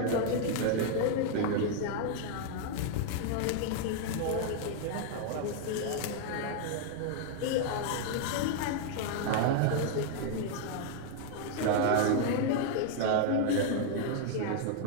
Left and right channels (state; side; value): different; both; correlation 0.00